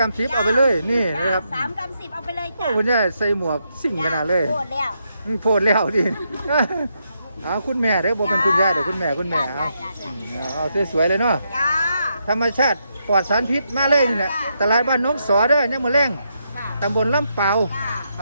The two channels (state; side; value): inverted; both; correlation -0.80